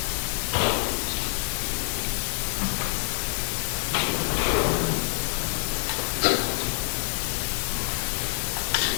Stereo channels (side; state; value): right; silent; digital silence